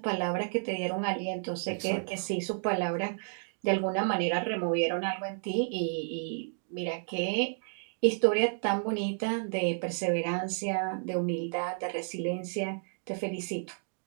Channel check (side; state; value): left; silent; digital silence